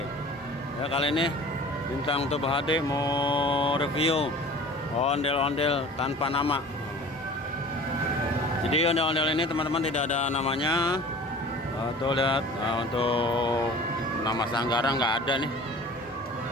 Ya kali ini Bintang Tube HD mau review ondel-ondel tanpa nama. Jadi ondel-ondel ini teman-teman tidak ada namanya. Tuh lihat, untuk nama sanggara nggak ada nih.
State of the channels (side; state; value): both; normal; correlation 0.43